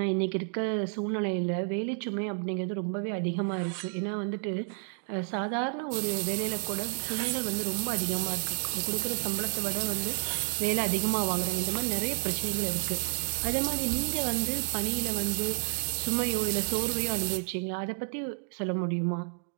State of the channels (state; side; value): silent; left; 58 dB below the other